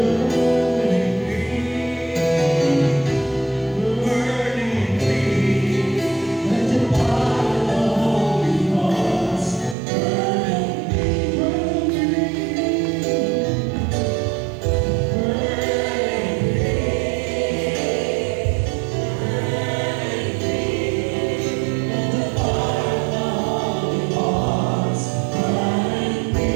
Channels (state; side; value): drops out; left; at 9.8 s